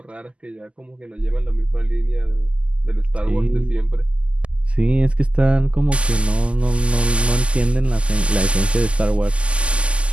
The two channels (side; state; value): left; late; 0.056 ms